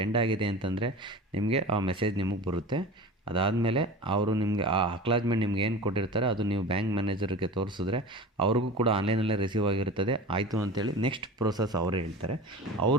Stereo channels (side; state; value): both; normal; correlation 0.34